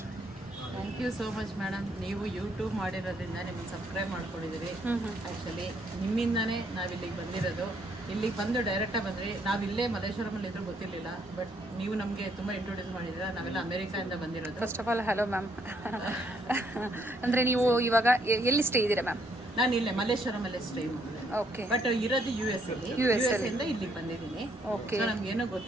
thank you so much madam. ನೀವು ಯೂಟ್ಯೂಬ್ ಮಾಡಿರೋದ್ರಿಂದ ನಿಮಗೆ ಸಬ್ಸ್ಕ್ರೈಬ್ ಮಾಡ್ಕೊಂಡಿದ್ದೀರಿ. ಆ್ಯಕ್ಚುಲಿ ನಿಮ್ಮಿಂದನೇ ನಾವು ಇಲ್ಲಿಗೆ ಬಂದಿರೋದು. ಇಲ್ಲಿಗೆ ಬಂದು ಡೈರೆಕ್ಟಾಗಿ ಬಂದ್ರಿ. ನಾವು ಇಲ್ಲೇ ಮಲ್ಲೇಶ್ವರಮಲ್ಲಿ ಇದ್ರೂ ಗೊತ್ತಿರಲಿಲ್ಲ, ಬಟ್ ನೀವು ನಮಗೆ ತುಂಬ ಇಂಟ್ರೊಡ್ಯೂಸ್ ಮಾಡಿದ್ದೀರಾ. ನಾವೆಲ್ಲ ಅಮೆರಿಕಾಯಿಂದ ಬಂದಿರೋದು. First of all hello ma'am. ಅಂದರೆ ನೀವು ಇವಾಗ ಎಲ್ಲಿ ಸ್ಟೇ ಇದ್ದೀರಾ ಮ್ಯಾಮ್? ನಾನು ಇಲ್ಲೇ ಮಲ್ಲೇಶ್ವರಮಲ್ಲೇ ಸ್ಟೇ ಮಾಡಿದೆ, ಓಕೆ. ಬಟ್ ಇರೋದು US ಅಲ್ಲಿ. US ಇಂದ ಇಲ್ಲಿಗೆ ಬಂದಿದ್ದೀನಿ. ಓಕೆ. ಸೊ ನಮ್ಗೇನೋ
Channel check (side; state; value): both; normal; correlation 0.70